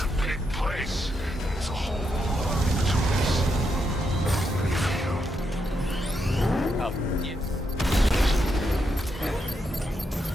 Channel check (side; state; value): both; normal; correlation 0.81